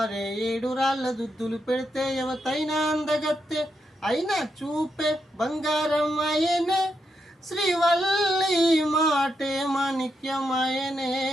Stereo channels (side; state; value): both; normal; correlation 0.83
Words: 7 రాళ్ళ దుద్దులు పెడితే ఎవతైనా అందగత్తే. అయినా చూపే బంగారం అయ్యనే, శ్రీవల్లి మాటే మాణిక్యమయనే.